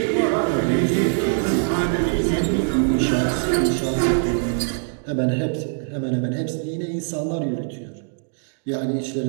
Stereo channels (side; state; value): left; silent; 62 dB below the other